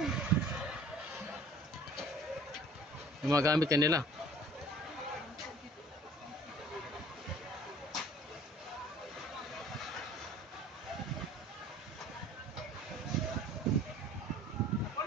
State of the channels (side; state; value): both; normal; correlation 0.49